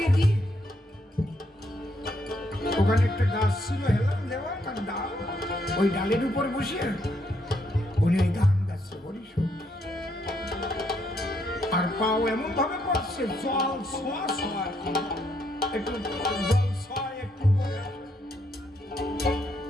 দিয়ে ওখানে একটা গাছ ছিল, হেলাম দেওয়া, তার ডাল, ওই ডালের উপর বসে উনি ওই গান গাচ্ছে, হরিশোর। আর পাও এমন ভাবে করছে, জল ছোঁয়া ছোঁয়া, একটু জল ছোঁয়া, একটু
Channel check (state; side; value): normal; both; correlation 0.74